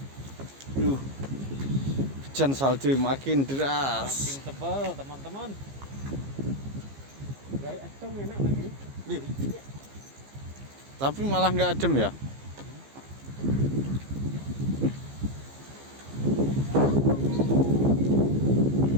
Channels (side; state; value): left; late; 15 ms